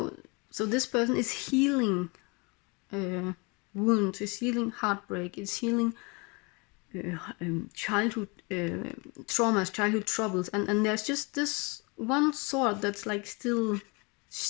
this person is healing wounds, is healing heartbreak, is healing childhood traumas, childhood troubles, and there's just this one sword that's like still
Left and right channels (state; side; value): quieter; right; 29.4 dB